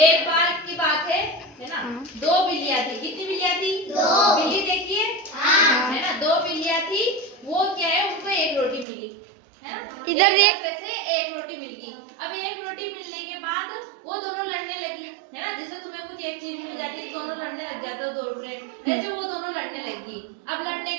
एक बार की बात है ना। दो बिल्लियां थी। कितनी बिल्लियां थी? दो। बिल्ली देखिए है ना, दो बिल्लियां थी। वो क्या है, उनको एक रोटी मिली है ना। इधर एक रोटी मिल गई। अब एक रोटी मिलने के बाद वो दोनों लड़ने लगी है ना। जैसे तुम्हें कुछ एक चीज मिल जाती है, दोनों लड़ने लग जाते हो, दो फ्रेंड, ऐसे वो दोनों लड़ने लगी। अब लड़ने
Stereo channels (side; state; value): left; drops out; at 8.8 s